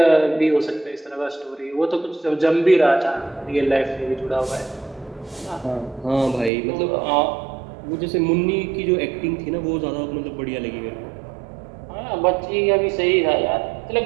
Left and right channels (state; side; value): drops out; left; at 6.5 s